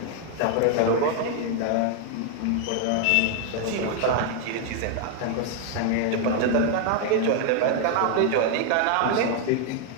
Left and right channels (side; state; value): both; different; correlation 0.00